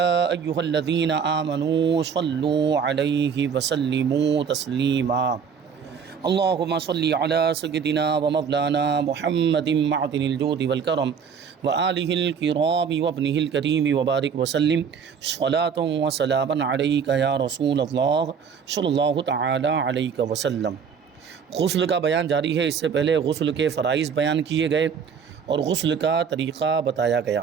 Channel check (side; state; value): left; quieter; 6.7 dB